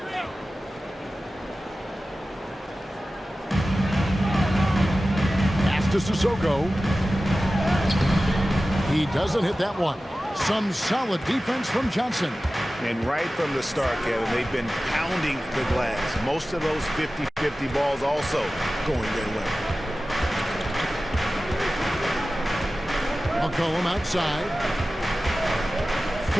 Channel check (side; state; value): both; normal; correlation 0.95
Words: Pass to Sissoko. He doesn't hit that one. Some solid defense from Johnson. And right from the start, Kevin, they've been pounding the glass. Most of those 50-50 balls also going their way. McCollum outside.